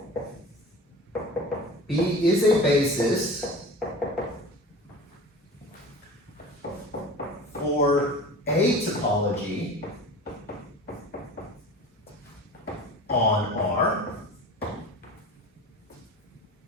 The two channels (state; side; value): normal; both; correlation 0.37